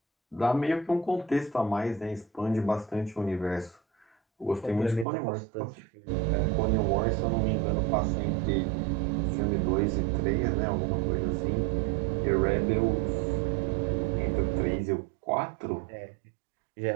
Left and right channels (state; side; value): drops out; left; at 5.1 s